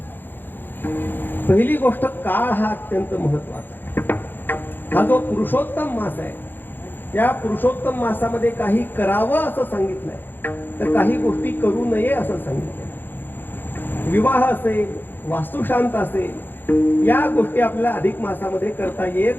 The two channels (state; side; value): late; right; 0.093 ms